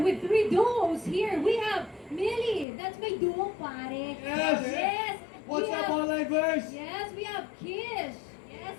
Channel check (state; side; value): drops out; right; at 2.7 s